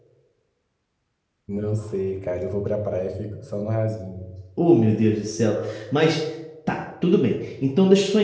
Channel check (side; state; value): both; identical; correlation 1.00